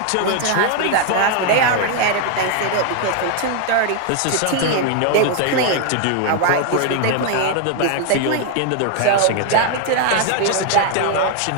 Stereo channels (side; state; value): both; different; correlation 0.00